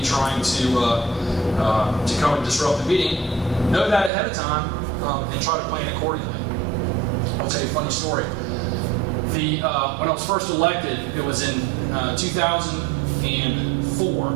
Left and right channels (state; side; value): drops out; left; at 4.1 s